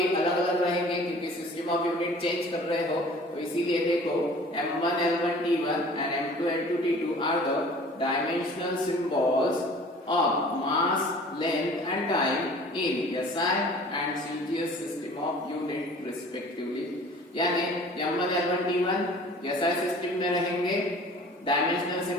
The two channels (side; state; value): both; normal; correlation 0.47